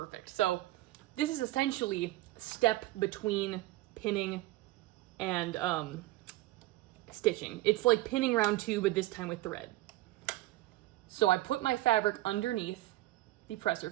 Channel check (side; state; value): left; quieter; 17.3 dB